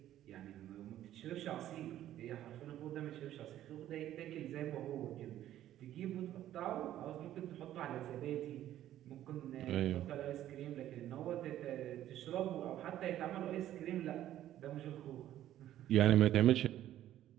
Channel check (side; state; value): left; quieter; 12.6 dB